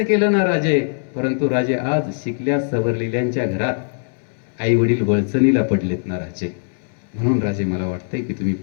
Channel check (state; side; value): silent; right; 65 dB below the other